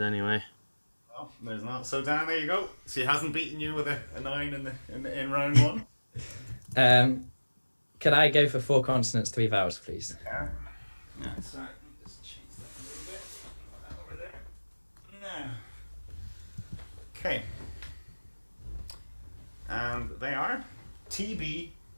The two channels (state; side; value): inverted; both; correlation -1.00